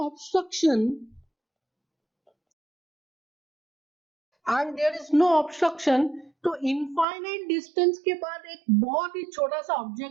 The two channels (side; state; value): left; drops out; at 7.1 s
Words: no obstruction, तो इनफाइनाइट डिस्टेंस के बाद एक बहुत ही छोटा सा